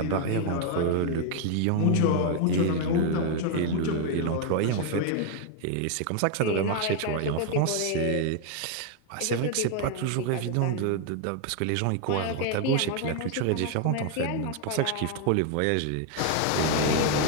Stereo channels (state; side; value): different; both; correlation 0.00